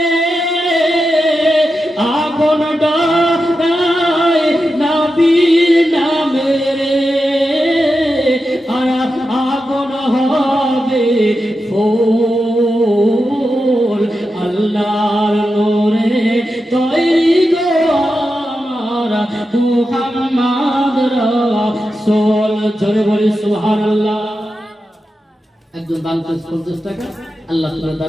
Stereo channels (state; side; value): normal; both; correlation 0.89